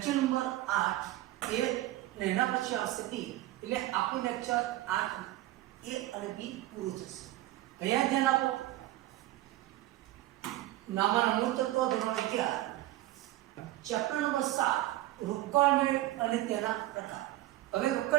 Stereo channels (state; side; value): quieter; left; 16.2 dB